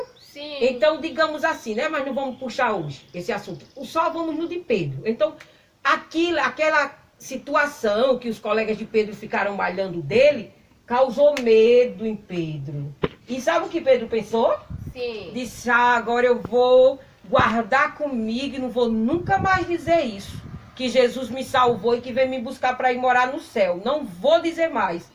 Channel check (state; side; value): identical; both; correlation 1.00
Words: Sim. Então, digamos assim, né? Mas não vamos puxar hoje esse assunto. Só vamos no de Pedro. Então, aquela situação que os colegas de Pedro ficaram malhando dele, causou medo em Pedro. E sabe o que Pedro pensou? Sim. Disse, agora eu vou guardar comigo e não vou nunca mais dizer isso. Que Jesus me salvou e que veio me buscar para ir morar no céu. Não vou dizer mais.